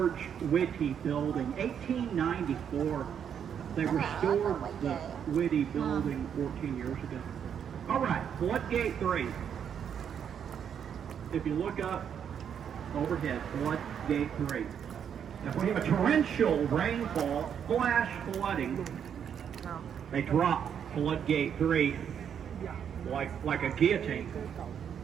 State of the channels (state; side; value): quieter; left; 8.2 dB